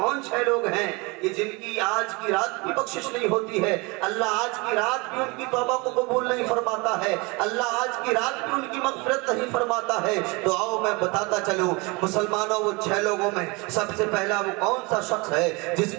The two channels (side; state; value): left; quieter; 26.9 dB